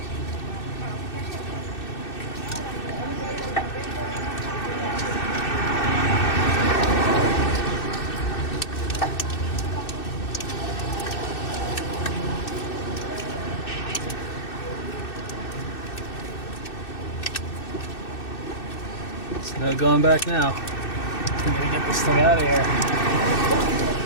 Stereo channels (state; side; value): late; right; 2.6 ms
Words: No going back now. I'm gonna get this thing out of here.